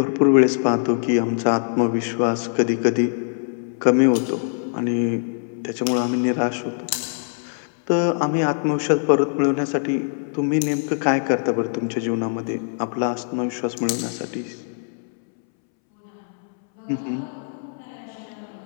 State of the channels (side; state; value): right; silent; 64 dB below the other